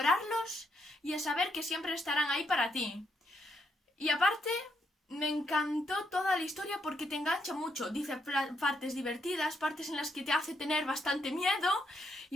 y a saber que siempre estarán ahí para ti. Y aparte, me encantó toda la historia porque te engancha mucho. Dice partes divertidas, partes en las que te hace tener bastante miedo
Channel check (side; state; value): both; normal; correlation 0.77